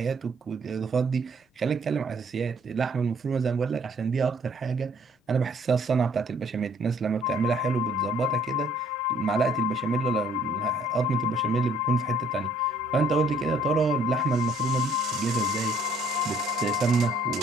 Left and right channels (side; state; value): both; normal; correlation 0.61